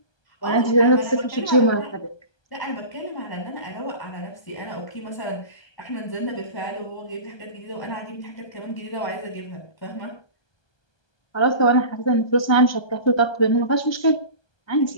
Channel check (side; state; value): right; late; 1.2 ms